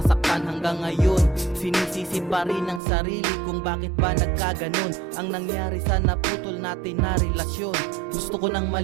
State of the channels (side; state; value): left; drops out; at 2.8 s